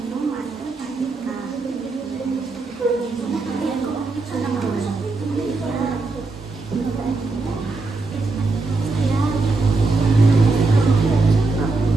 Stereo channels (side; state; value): left; quieter; 3.6 dB